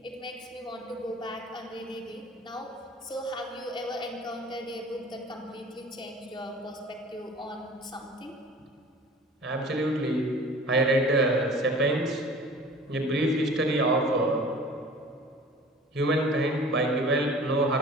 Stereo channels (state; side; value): normal; both; correlation 0.44